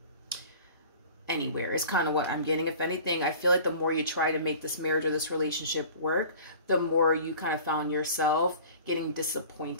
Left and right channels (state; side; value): inverted; both; correlation -0.43